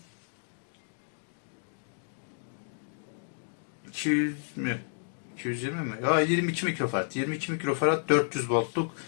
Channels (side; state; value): right; silent; digital silence